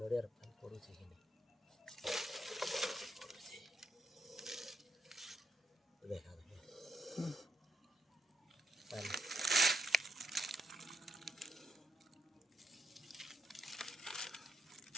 नड़ियार पड़ुछि देखा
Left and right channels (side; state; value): both; normal; correlation 0.79